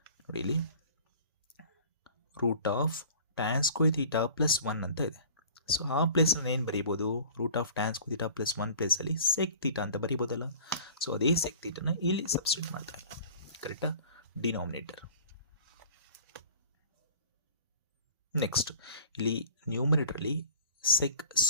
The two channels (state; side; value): inverted; both; correlation -0.45